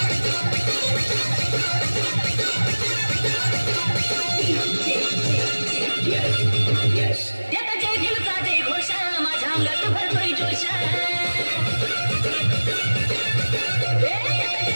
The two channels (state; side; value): inverted; both; correlation -1.00